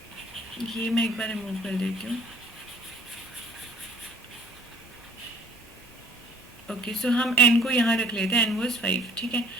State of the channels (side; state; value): both; normal; correlation 0.54